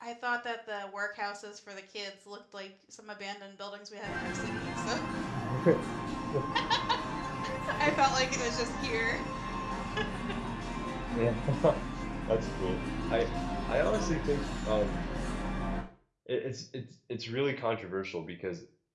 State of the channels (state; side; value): identical; both; correlation 1.00